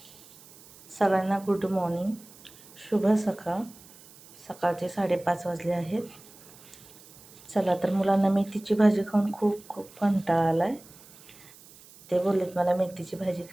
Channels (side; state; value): right; noise; hiss, 22 dB below the sound